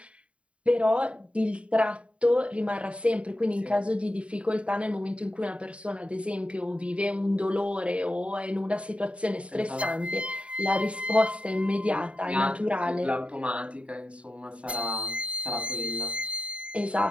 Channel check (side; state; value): left; late; 0.061 ms